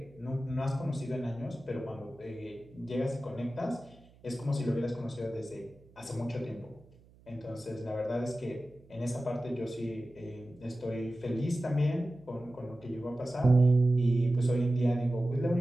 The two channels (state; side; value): noise; right; hum, 26 dB below the sound